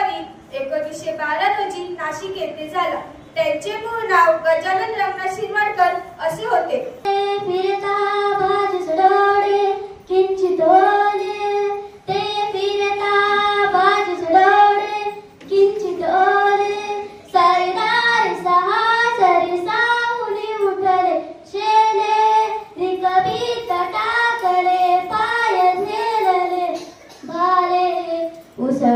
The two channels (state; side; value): identical; both; correlation 1.00